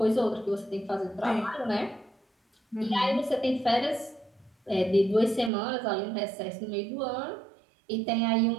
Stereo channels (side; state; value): left; drops out; at 5.5 s